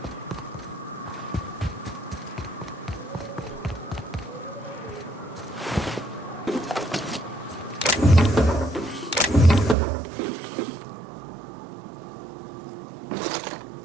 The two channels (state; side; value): drops out; left; at 9.8 s